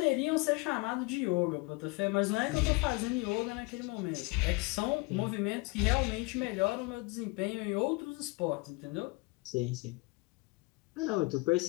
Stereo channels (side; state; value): right; quieter; 25.7 dB